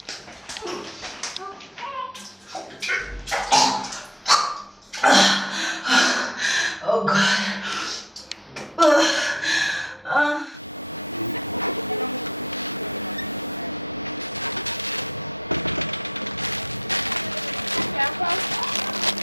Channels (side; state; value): both; normal; correlation 0.50